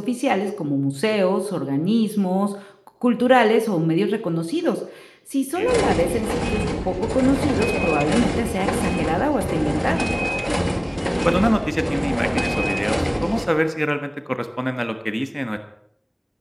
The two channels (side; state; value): both; identical; correlation 1.00